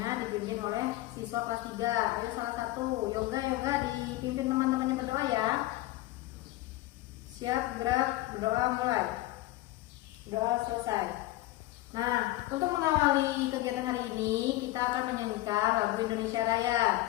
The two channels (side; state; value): right; quieter; 17.2 dB